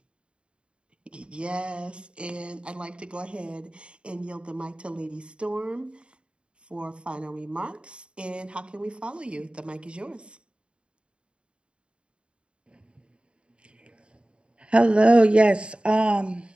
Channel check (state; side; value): late; left; 0.055 ms